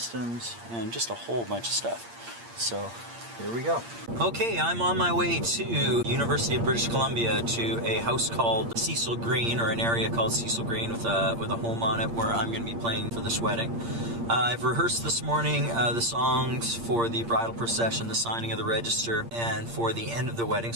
and just a whole bunch of stuff. So here we go. Okay, I'm on my way to University of British Columbia to a house called Cecil Green, or an area called Cecil Green with a home on it where I'm going to be playing for this wedding. I've rehearsed this morning the songs for the bridal procession, the signing of the register, and for the end of the wedding,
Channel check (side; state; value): left; late; 8.6 ms